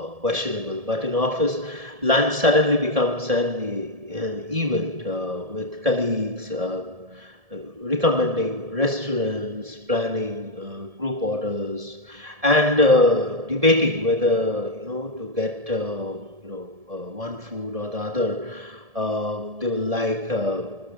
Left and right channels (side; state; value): left; late; 1.7 ms